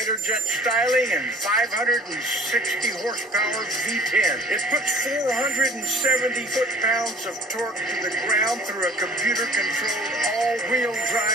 jet styling and 560 horsepower V10. It puts 470 foot-pounds of torque to the ground through a computer-controlled all-wheel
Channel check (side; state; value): both; normal; correlation 0.51